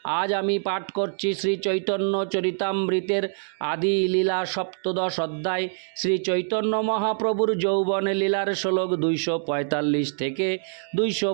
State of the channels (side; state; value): left; silent; digital silence